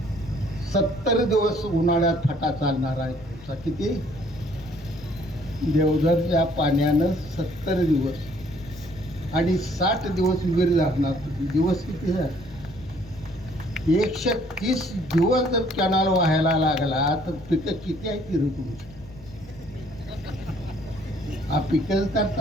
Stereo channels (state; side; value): noise; left; hum, 20 dB below the sound